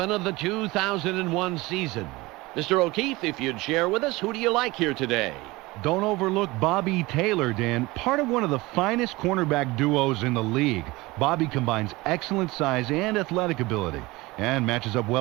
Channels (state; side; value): quieter; left; 21.4 dB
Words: of the 2001 season. Mr. O'Keefe, if you'd share with us, who do you like here today? Don't overlook Bobby Taylor, Dan. Part of one of the finest cornerback duos in the league. Bobby combines excellent size and athletic ability and matches up